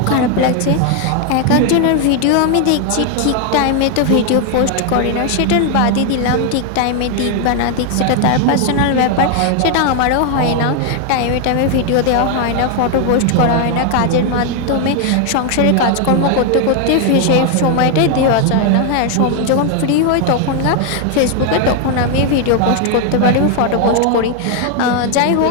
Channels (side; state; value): both; different; correlation 0.01